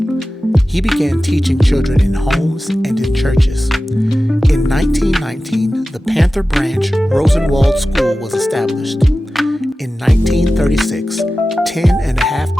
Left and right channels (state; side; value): normal; both; correlation 0.95